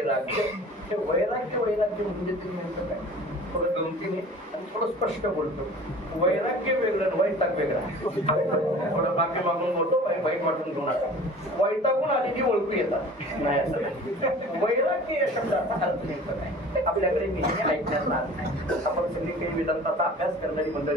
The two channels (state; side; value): normal; both; correlation 0.44